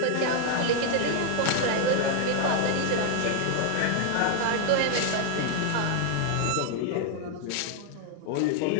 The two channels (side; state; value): both; different; correlation 0.00